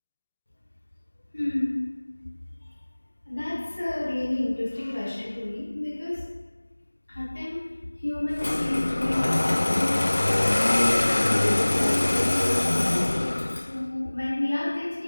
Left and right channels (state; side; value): inverted; both; correlation -1.00